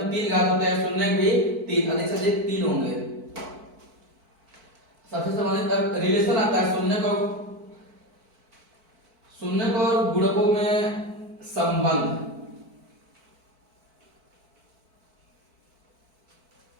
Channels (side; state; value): left; late; 4.5 ms